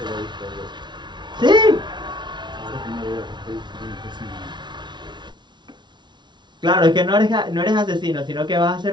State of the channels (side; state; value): left; late; 0.22 ms